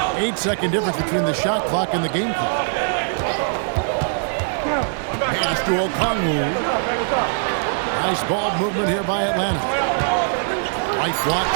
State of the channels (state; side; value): silent; left; digital silence